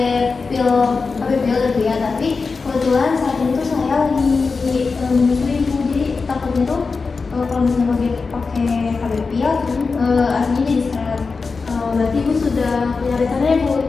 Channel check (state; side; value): quieter; right; 4.5 dB